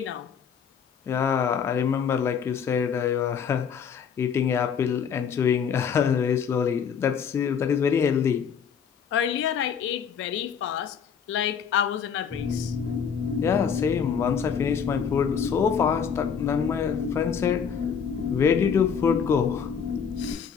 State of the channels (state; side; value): quieter; right; 7.1 dB